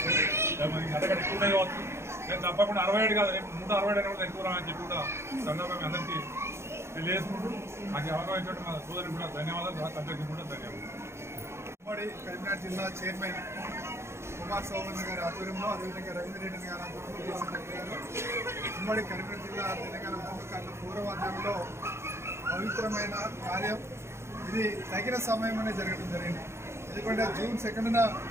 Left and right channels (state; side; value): late; left; 0.13 ms